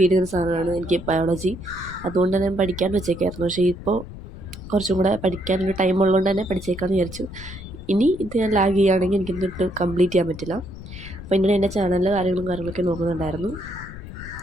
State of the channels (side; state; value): left; noise; rumble, 13 dB below the sound